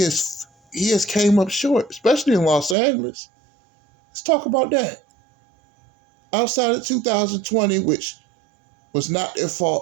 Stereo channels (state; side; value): drops out; left; at 2.8 s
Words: has came up short, especially in Los Angeles. Let's talk about that. Outside of 2020, which was not their